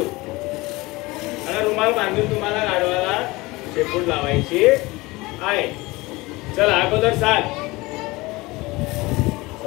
आणि रुमाल बांधून तुम्हाला गाढवाला शेपूट लावायची आहे. चला अगोदर सांग.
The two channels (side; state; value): right; quieter; 21.9 dB